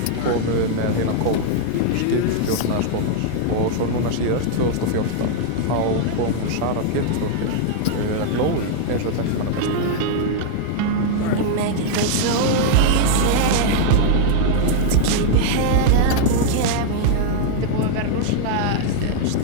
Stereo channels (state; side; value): different; both; correlation 0.00